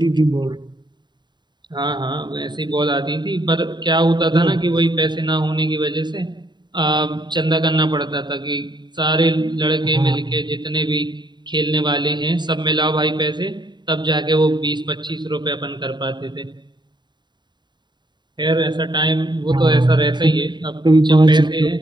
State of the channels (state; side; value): late; left; 0.22 ms